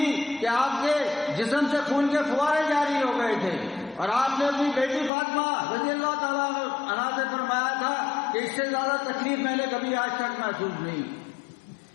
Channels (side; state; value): right; drops out; at 5.1 s